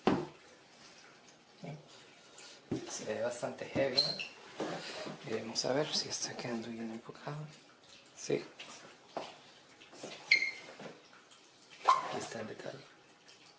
Se ve bastante heavy, ¿no? Vamos a ver si está quedando bien enfocado. Sí. Aquí está el detalle.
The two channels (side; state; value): both; identical; correlation 1.00